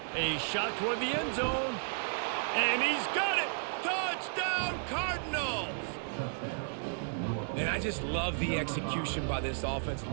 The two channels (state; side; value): silent; left; digital silence